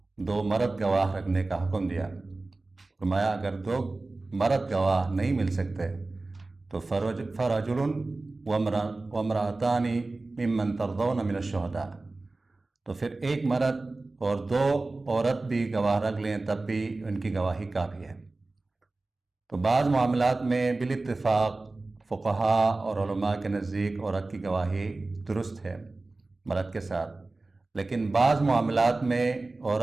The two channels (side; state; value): left; quieter; 3.2 dB